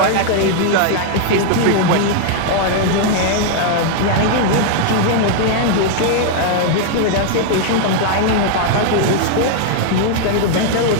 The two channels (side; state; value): both; different; correlation 0.00